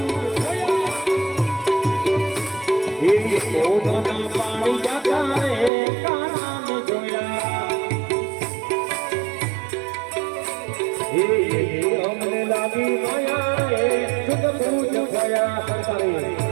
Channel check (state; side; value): drops out; left; at 5.7 s